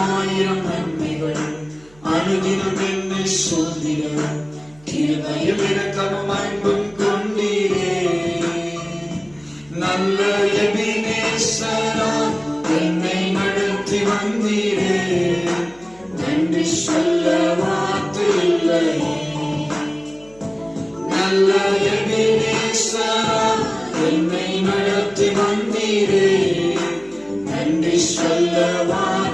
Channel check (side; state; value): right; noise; hum, 27 dB below the sound